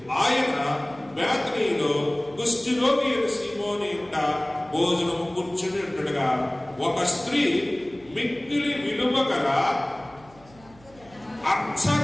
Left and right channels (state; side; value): noise; right; hum, 25 dB below the sound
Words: ఆయన బేతనీలో కుష్ఠరోగి అయిన సీమోని ఇంట భోజనము కూర్చుని ఉండగా ఒక స్త్రీ మిక్కిలి విలువ గల అచ్చ